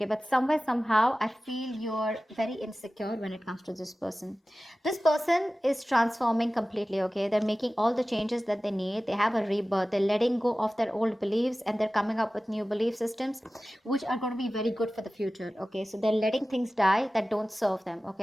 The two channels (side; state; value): both; normal; correlation 0.96